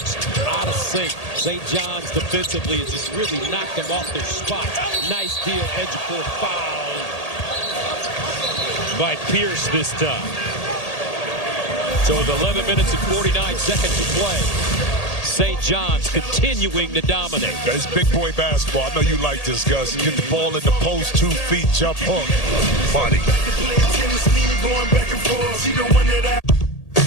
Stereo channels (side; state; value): right; late; 1.8 ms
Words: out of sync. St. John's defensively has just really knocked them off their spot. Nice deal, Ejiofor foul by Pierce this time. So with 11 minutes and 49 seconds to play, St. John's continuing to dominate. It's big boy basketball. I know you like this, Gus. You get the ball in the post, 2 feet, jump hook. Funny.